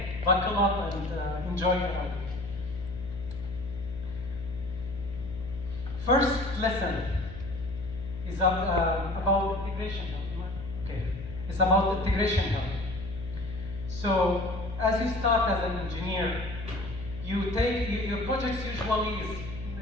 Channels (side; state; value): left; noise; hum, 11 dB below the sound